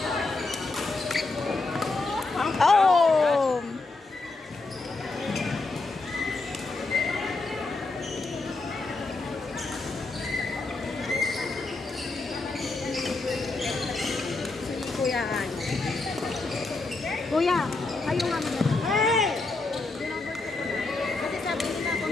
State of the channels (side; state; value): right; quieter; 3.5 dB